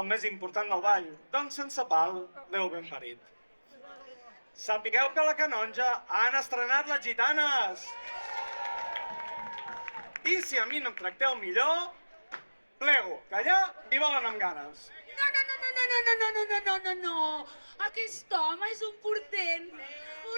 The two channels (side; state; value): both; inverted; correlation -1.00